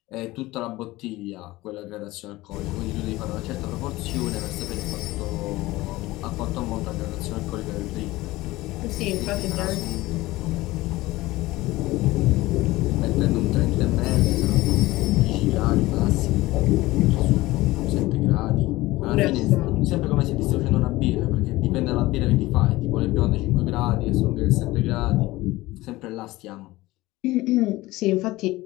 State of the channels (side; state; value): right; quieter; 18.9 dB